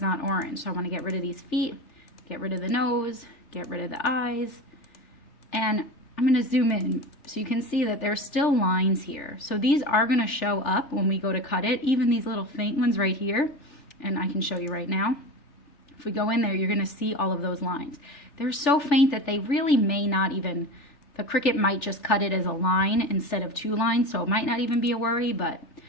orange. So I want to get rid of these feet, get rid of the nose, get rid of the eyes. And I'm going to zoom in so you can see that there's still lines here. So these are going to show up when we go to cut it, even these little faint ones right here. And I can show you right now. If we go in there, you're going to see all of those lines. They're so faint that they really may not even, the Cricut might just cut it as a line instead of two lines, so it might not even be a worry, but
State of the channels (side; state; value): right; late; 3.4 ms